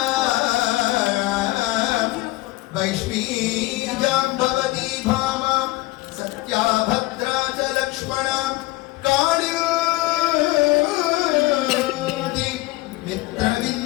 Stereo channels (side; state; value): right; quieter; 20.0 dB